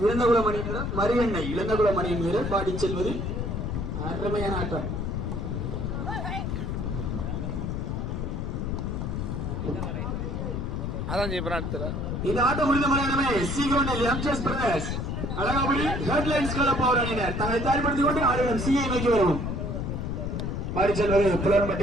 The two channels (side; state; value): left; noise; rumble, 2 dB below the sound